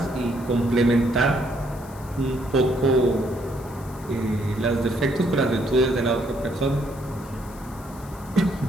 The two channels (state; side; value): noise; left; hiss, 22 dB below the sound